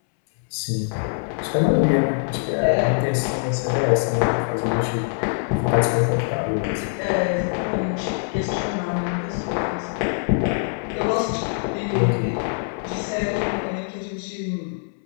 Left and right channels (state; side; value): silent; right; 62 dB below the other